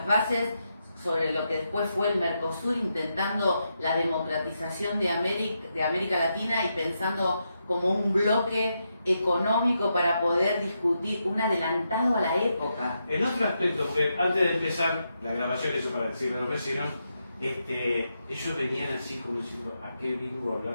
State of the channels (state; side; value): inverted; both; correlation -0.84